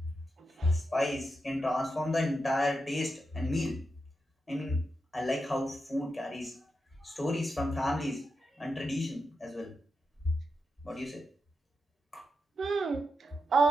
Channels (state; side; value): normal; both; correlation 0.87